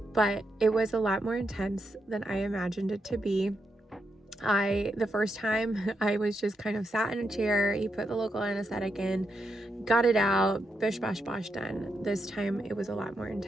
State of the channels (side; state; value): both; normal; correlation 0.83